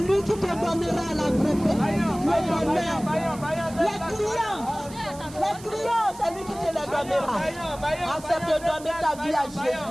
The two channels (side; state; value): right; noise; hiss, 19 dB below the sound